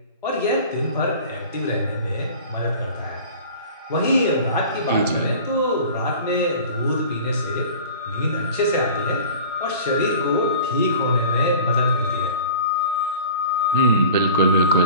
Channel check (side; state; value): both; inverted; correlation -0.41